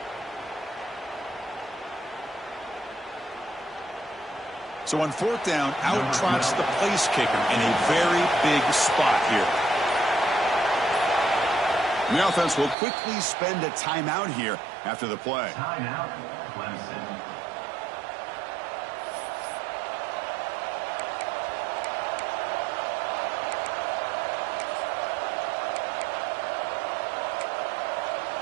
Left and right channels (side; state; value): left; drops out; at 12.8 s